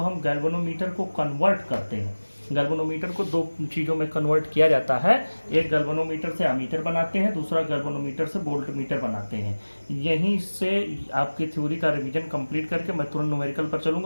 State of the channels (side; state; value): both; inverted; correlation -1.00